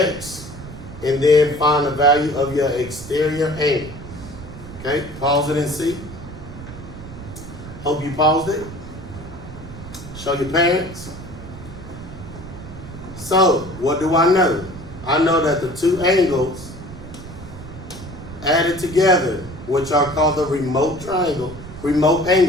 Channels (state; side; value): noise; right; rumble, 13 dB below the sound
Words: and then find the value of your exterior angle. Okay? Pause it and see. Hope you paused it. Show your parents. So, what do I know? I know that the two angles added together, which are called the remote